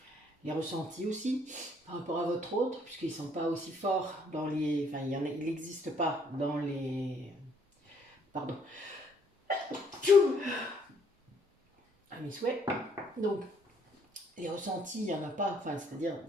Les ressentis aussi, par rapport à votre autre, puisqu'ils ne sont pas aussi forts dans les... Enfin, il n'existe pas dans les... Pardon. À mes souhaits. Donc, les ressentis, il n'y en a pas, enfin, c'est-à-dire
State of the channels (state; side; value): normal; both; correlation 0.66